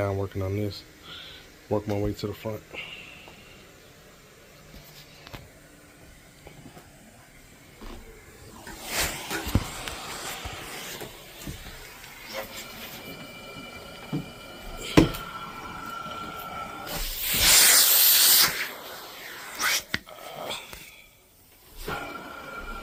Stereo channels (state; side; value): identical; both; correlation 1.00